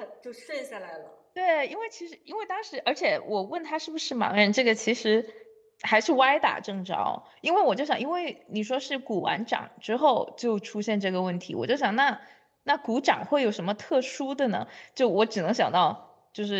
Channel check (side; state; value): both; identical; correlation 1.00